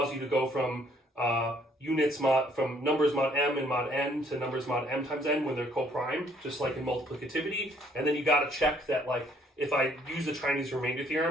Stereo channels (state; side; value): normal; both; correlation 0.64